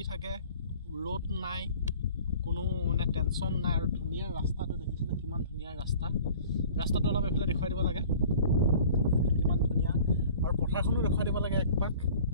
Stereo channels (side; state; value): both; inverted; correlation -0.47